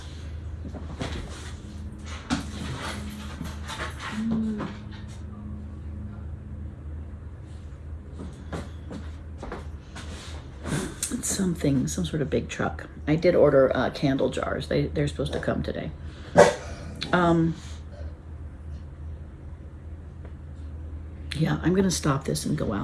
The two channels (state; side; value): identical; both; correlation 1.00